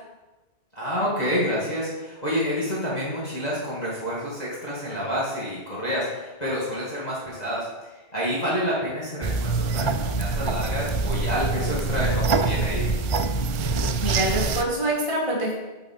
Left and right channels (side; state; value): right; late; 1.4 ms